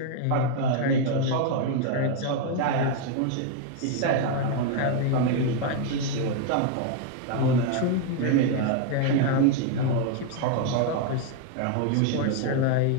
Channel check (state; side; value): different; both; correlation 0.00